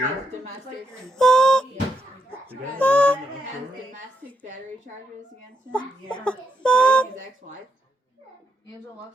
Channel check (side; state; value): both; normal; correlation 0.79